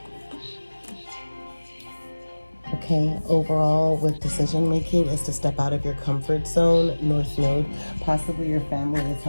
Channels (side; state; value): both; inverted; correlation -1.00